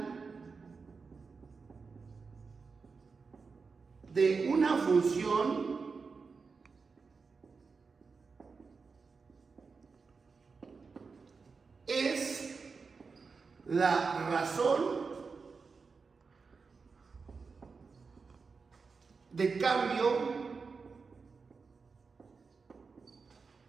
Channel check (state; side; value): quieter; left; 4.8 dB